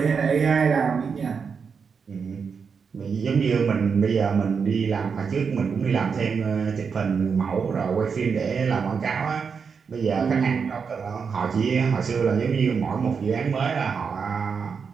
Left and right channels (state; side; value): quieter; left; 5.9 dB